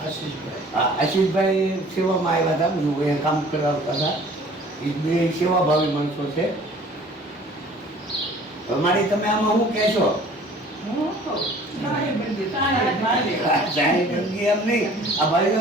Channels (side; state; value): both; normal; correlation 0.50